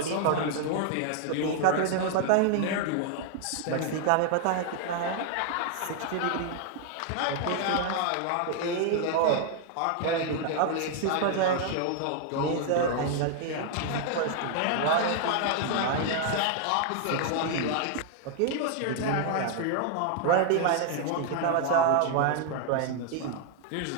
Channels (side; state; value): both; different; correlation 0.00